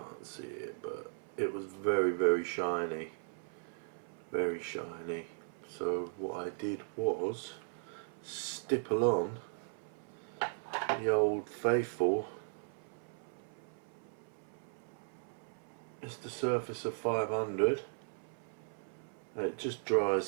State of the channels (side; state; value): left; silent; 53 dB below the other